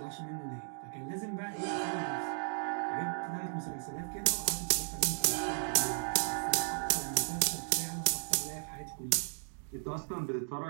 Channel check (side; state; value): left; silent; digital silence